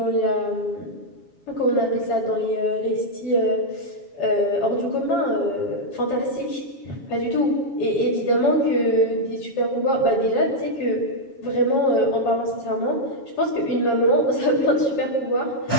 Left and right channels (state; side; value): late; right; 7.2 ms